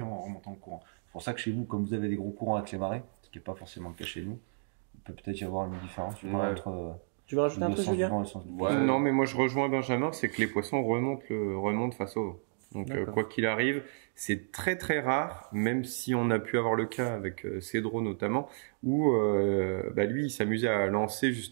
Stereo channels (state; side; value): silent; left; digital silence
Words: en remontant le courant. C'est pour ça que chez vous, comme vous avez des gros courants avec les marées, ce qui n'est pas forcément le cas chez nous, il peut peut-être y avoir une différence je sais pas, Ouais. entre Tu veux rajouter un le truc, sens du Julien? vent et le sens du Ouais. poisson. Non, mais moi je rejoins Benjamin, c'est que les poissons remontent face au vent. Donc D'accord. quoi qu'il arrive, c'est très très rare, même si on a pu avoir le cas avec Cédro notamment, où lui il s'amusait à lancer